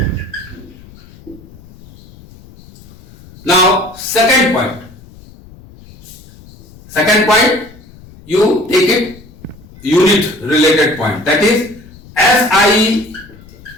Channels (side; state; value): left; noise; rumble, 22 dB below the sound